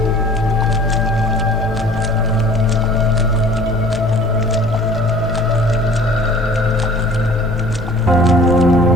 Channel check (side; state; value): both; normal; correlation 0.48